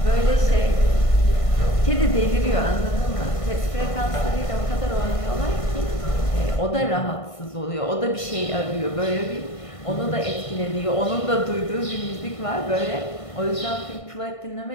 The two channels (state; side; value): late; right; 1.5 ms